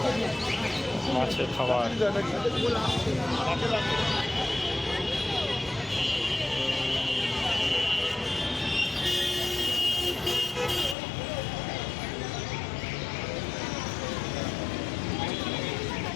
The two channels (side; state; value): right; drops out; at 11.0 s